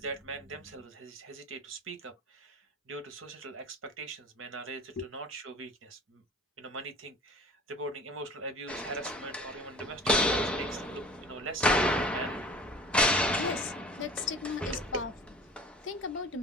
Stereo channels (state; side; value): normal; both; correlation 0.42